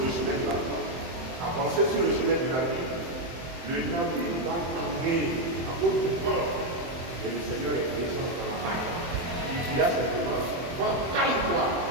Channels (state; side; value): late; left; 23 ms